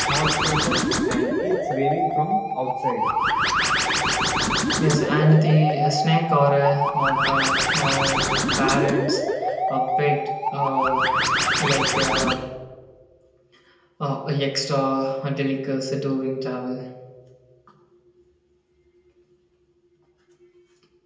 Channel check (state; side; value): identical; both; correlation 1.00